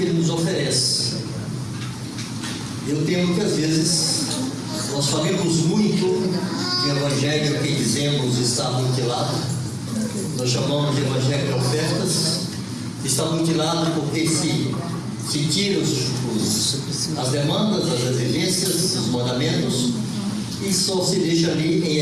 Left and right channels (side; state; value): both; identical; correlation 1.00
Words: Ele nos oferece. Eu temo que às vezes nós falamos muito que o Evangelho que dizemos está mutilado, nós chamamos de Evangelho de ofertas, está mutilado porque se tira as demandas, as exigências, os mandamentos, e só se deixa ali em